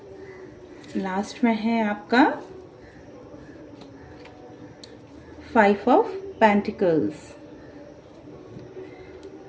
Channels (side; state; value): both; identical; correlation 1.00